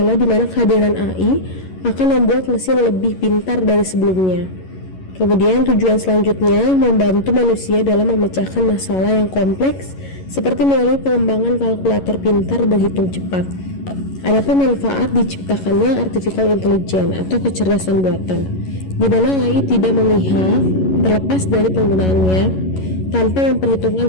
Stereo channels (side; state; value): right; late; 11 ms